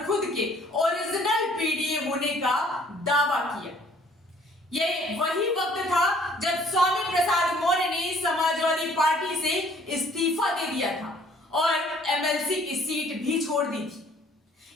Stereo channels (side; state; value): both; normal; correlation 0.58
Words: खुद के ओरिजिनल पीडीए होने का दावा किया। यह वही वक्त था जब स्वामी प्रसाद मौर्य ने समाजवादी पार्टी से इस्तीफा दे दिया था और एमएलसी की सीट भी छोड़ दी थी।